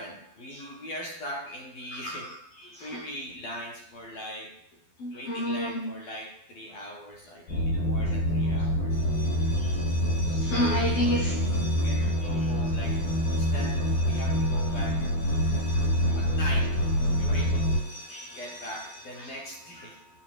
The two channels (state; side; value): late; right; 12 ms